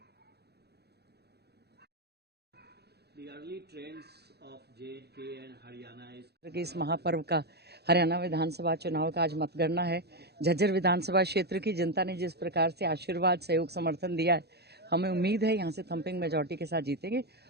The early trends of J&K and Haryana is इस महापर्व का हरियाणा विधानसभा चुनाव का आज मतगणना है। झज्जर विधानसभा क्षेत्र की जनता ने जिस प्रकार से आशीर्वाद, सहयोग, समर्थन दिया है, हमें उम्मीद है यहाँ से थम्पिंग मेजॉरिटी के साथ जीतेंगे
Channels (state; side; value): late; left; 0.48 ms